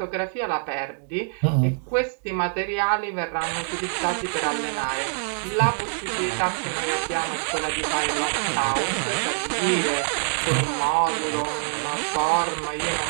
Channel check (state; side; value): silent; left; 62 dB below the other